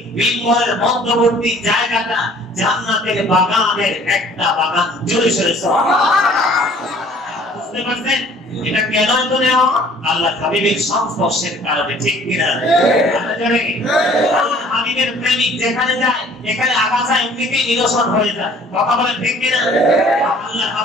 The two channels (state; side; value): normal; both; correlation 0.54